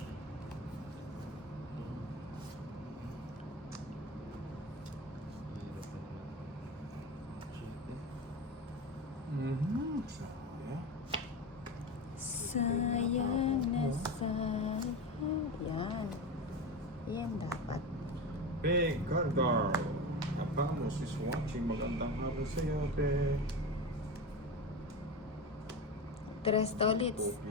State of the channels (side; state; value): both; normal; correlation 0.23